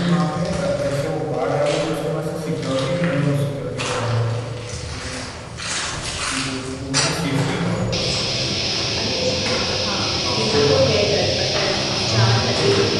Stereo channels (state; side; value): identical; both; correlation 1.00